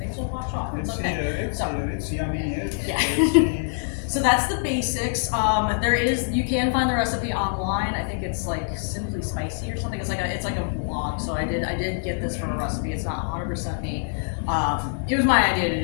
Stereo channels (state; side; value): silent; right; 62 dB below the other